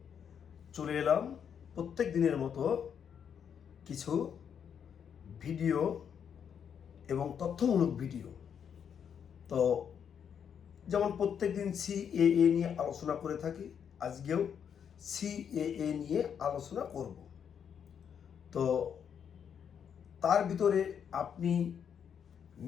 চলে এলাম প্রত্যেক দিনের মতো কিছু ভিডিও এবং তথ্যমূলক ভিডিও। তো যেমন প্রত্যেক দিন সিএএ নিয়ে আলোচনা করে থাকি, আজকেও সিএএ নিয়ে আলোচনা করব। তো তার ভিতরে আপনি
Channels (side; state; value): right; quieter; 7.9 dB